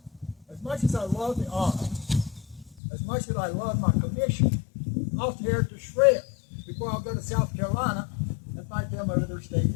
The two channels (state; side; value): drops out; right; at 2.8 s